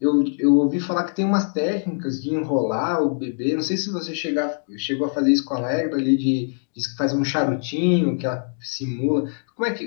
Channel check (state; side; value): silent; right; 64 dB below the other